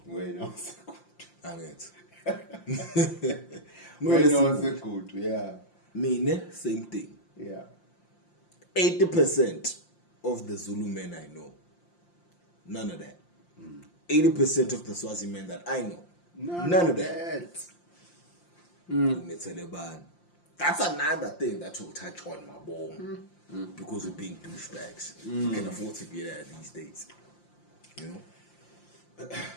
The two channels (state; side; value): late; right; 5.7 ms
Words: Wena wasekude. angithi Wena wasekude, yeah. Mine same thing. Yeah. 80% of the Zulu men I know, none of that. 80% of the Swazi men that I know, none of that. That's another thing that will touch on my bone because we're being douchebags. You can afford to be there these days. You know?